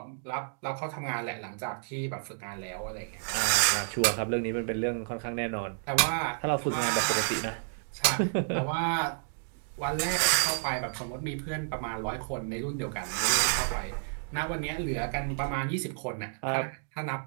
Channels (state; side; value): silent; left; digital silence